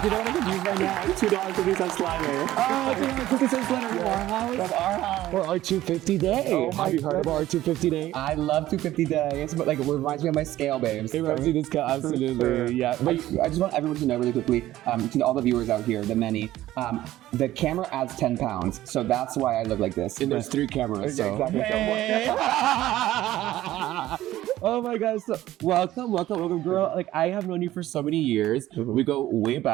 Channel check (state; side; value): quieter; left; 14.7 dB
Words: you know what I can use right now? $2.50 slider. Oh, $2.50 slider from our house. From our house. For our 250 day. Oh my Have you heard about our 250 day? I love 250 days, but like it reminds me of my scale, babes. It reminds me of this guy, absolutely. Sure. Yeah. I just want everyone to know really quickly, to all the viewers out here, the many, the camera adds 10 pounds, so that's why I look like this. And there's 3 cameras, so. Exactly. Hey. Oh my gosh, so welcome, girl. Like, I have known you for so many years. We go way